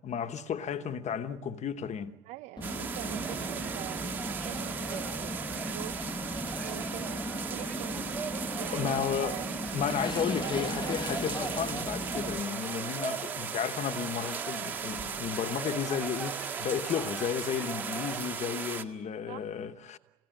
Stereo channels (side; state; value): both; normal; correlation 0.37